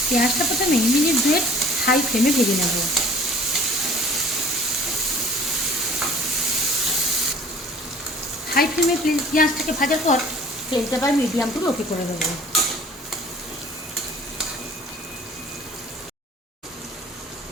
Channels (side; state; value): both; normal; correlation 0.51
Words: পেঁয়াজটা প্রথমে মিনিট 2 হাই ফ্লেমে ভেজে নেব। হাই ফ্লেমে পেঁয়াজটাকে ভাজার পর ফ্লেমটা আবার মিডিয়াম টু লোতে করে দেবো।